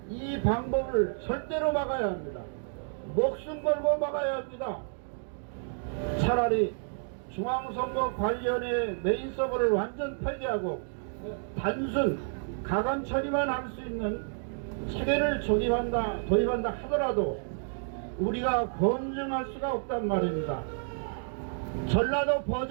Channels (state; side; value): silent; left; digital silence